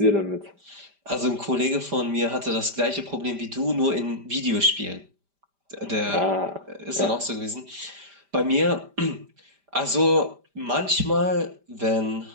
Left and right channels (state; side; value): late; left; 5.0 ms